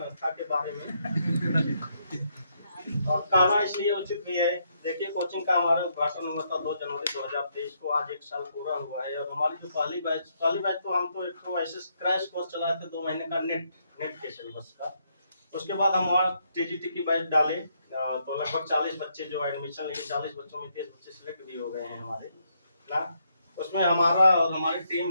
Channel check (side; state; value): both; inverted; correlation -0.76